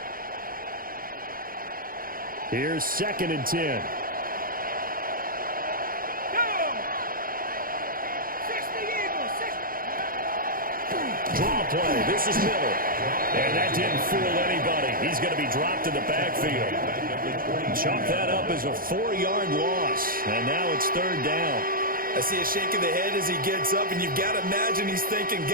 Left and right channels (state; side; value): late; left; 0.42 ms